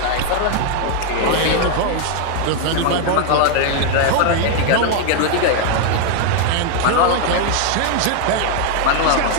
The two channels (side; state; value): both; different; correlation 0.00